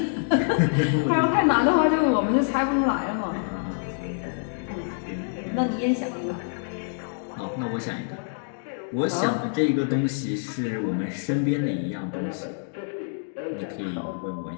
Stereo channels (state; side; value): silent; right; digital silence